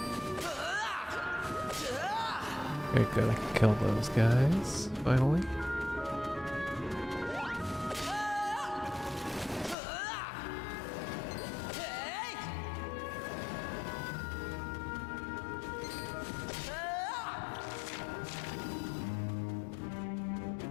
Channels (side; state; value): right; drops out; at 9.8 s